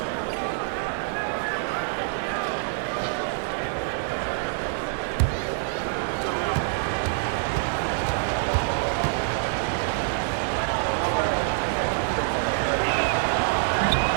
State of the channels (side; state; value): left; silent; digital silence